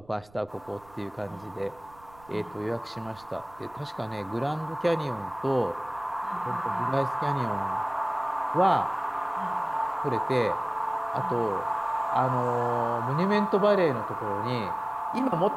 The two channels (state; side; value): noise; right; rumble, 26 dB below the sound